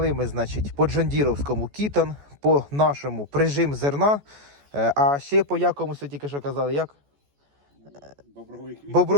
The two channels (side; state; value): left; late; 14 ms